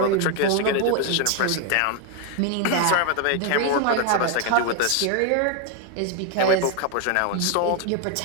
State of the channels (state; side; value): different; both; correlation 0.01